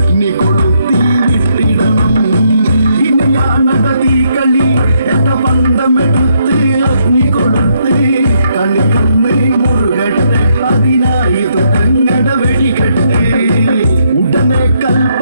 കൊളുത്തി വിട്ടിടണം. ഇനിയാണത തീക്കളി, എന്ന പന്തമെടുത്ത് അഗ്നി കൊളുത്ത് കളിക്കുന്ന മുറുകട്ടെ, അതിനായി തുടങ്ങട വെടികെട്ട്. ഉടനെ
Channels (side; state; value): both; inverted; correlation -0.75